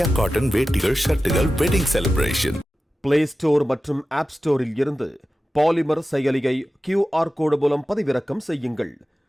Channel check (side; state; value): both; normal; correlation 0.94